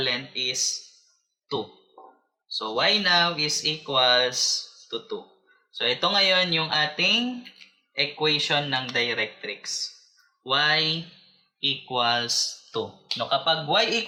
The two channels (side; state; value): both; identical; correlation 1.00